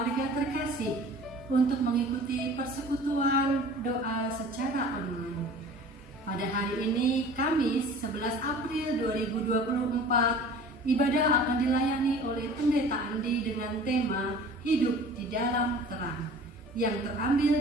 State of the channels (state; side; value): normal; both; correlation 0.44